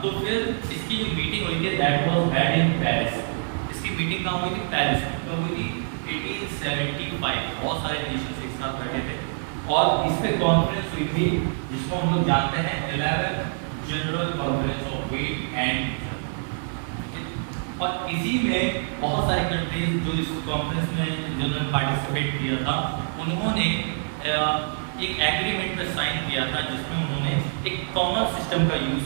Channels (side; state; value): left; silent; digital silence